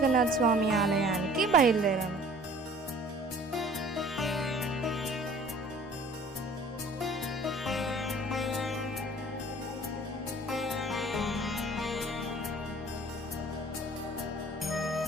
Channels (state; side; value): normal; both; correlation 0.50